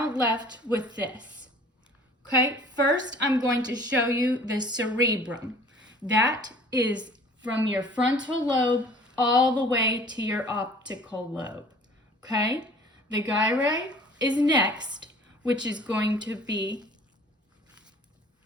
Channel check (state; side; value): normal; both; correlation 0.50